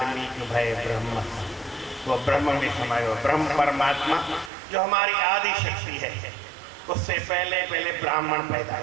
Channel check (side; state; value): left; drops out; at 4.5 s